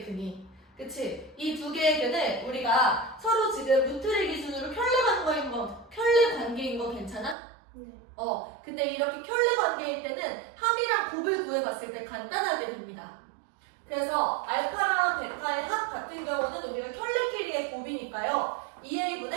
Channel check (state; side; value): drops out; left; at 7.4 s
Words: 근이. 그치? 이 두 개의 근을 우리가 서로 지금 루트를 기준으로 켤레 관계인 거 괜찮아? 네. 근데 이렇게 켤레 관계일 때는 합이랑 곱을 구해봤을 때 간단하게 됩니다. 그래서 알파랑 베타의 합 같은 경우는 우리가 켤레끼리의 곱이니까요.